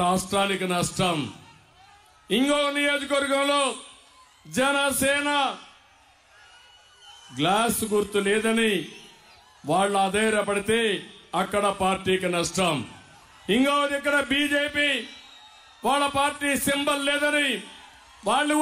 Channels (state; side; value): identical; both; correlation 1.00